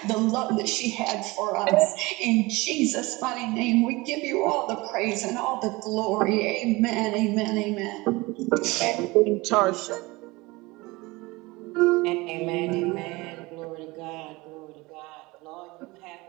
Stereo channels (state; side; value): quieter; left; 22.7 dB